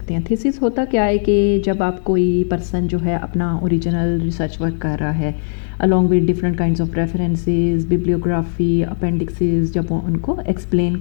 हैं। थीसिस होता क्या है कि जब आप कोई पर्सन जो है अपना ओरिजिनल रिसर्च वर्क कर रहा है along with different kinds of references, bibliography, appendices, जब वो उनको एक्सप्लेन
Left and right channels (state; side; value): silent; right; 67 dB below the other